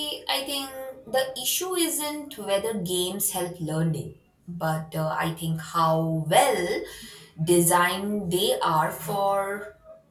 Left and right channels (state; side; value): identical; both; correlation 1.00